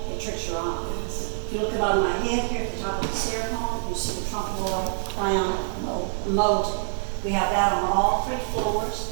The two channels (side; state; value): left; silent; digital silence